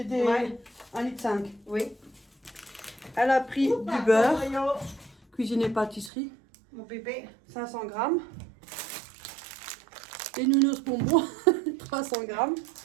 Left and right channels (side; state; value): left; drops out; at 6.1 s